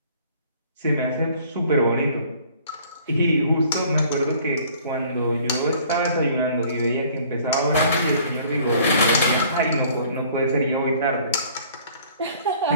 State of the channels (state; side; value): inverted; both; correlation -0.54